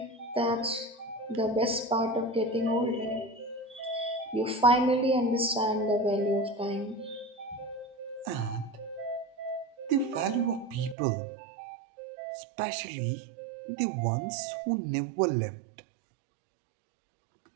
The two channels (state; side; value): drops out; left; at 11.0 s